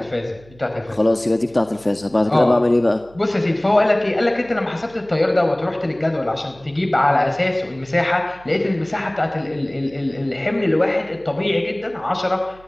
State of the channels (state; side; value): noise; right; hum, 25 dB below the sound